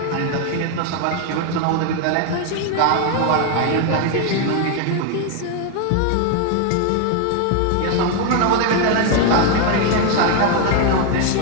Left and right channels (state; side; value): different; both; correlation 0.01